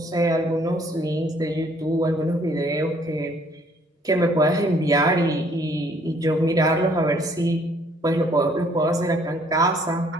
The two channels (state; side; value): normal; both; correlation 0.62